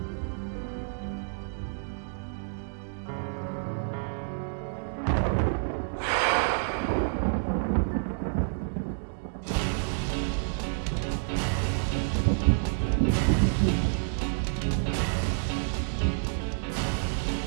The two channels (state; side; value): silent; left; digital silence